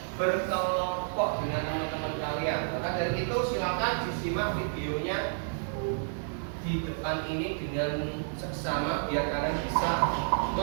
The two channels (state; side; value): silent; left; digital silence